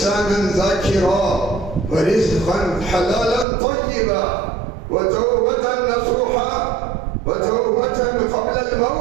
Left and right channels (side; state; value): left; drops out; at 3.5 s